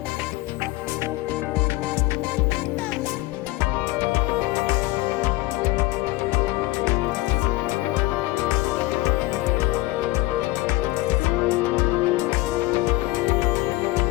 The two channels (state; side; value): quieter; right; 19.1 dB